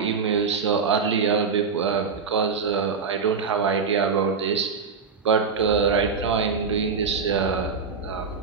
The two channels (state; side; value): quieter; left; 5.4 dB